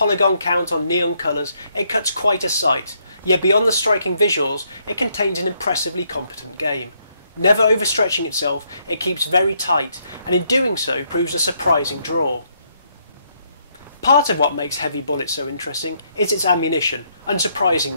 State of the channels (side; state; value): both; inverted; correlation -0.74